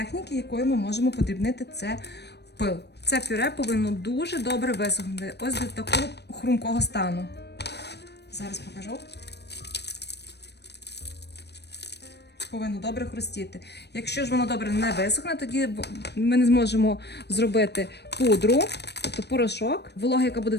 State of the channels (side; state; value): right; late; 0.49 ms